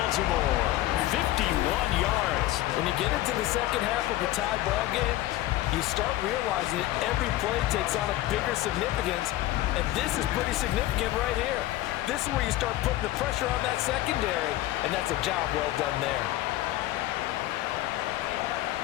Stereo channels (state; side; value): quieter; right; 15.5 dB